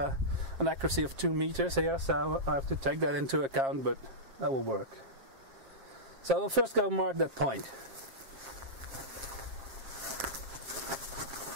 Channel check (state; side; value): late; left; 7.5 ms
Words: accuracy of 2 meters here, so I have to take that into account, but that will work. So I will first go mark that point.